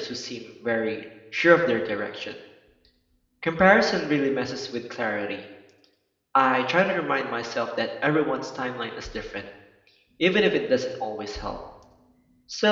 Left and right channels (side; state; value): both; identical; correlation 1.00